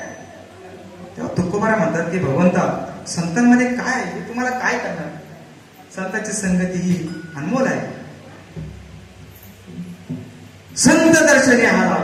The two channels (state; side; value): identical; both; correlation 1.00